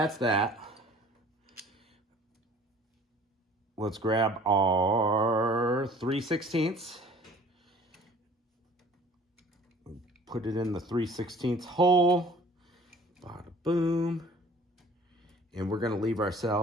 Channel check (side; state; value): both; normal; correlation 0.50